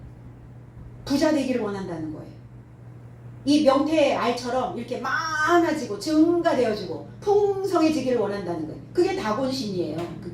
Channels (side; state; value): both; identical; correlation 1.00